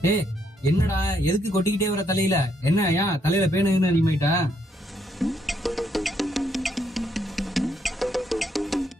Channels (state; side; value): normal; both; correlation 0.74